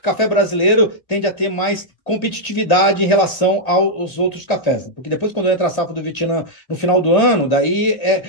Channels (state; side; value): late; right; 2.0 ms